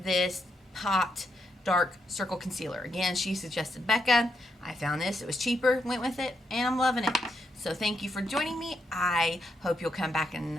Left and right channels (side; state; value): both; normal; correlation 0.81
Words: this Pot Dark Circle Concealer. Again, she suggested Becca. I found this. It was cheaper. Went with it. And I'm loving it. So thank you for joining me. I hope you'll come back and